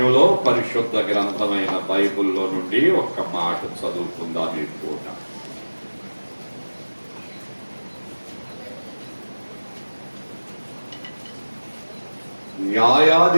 పరిశుద్ధ గ్రంథమైన బైబిల్లో నుండి ఒక్క మాట చదువుకుందాం ఈ పూట.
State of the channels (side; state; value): both; inverted; correlation -1.00